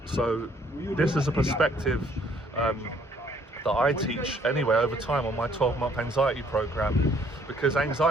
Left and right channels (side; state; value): both; normal; correlation 0.63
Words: So this is a perspective that I teach anyway over time on my 12-month anxiety program, because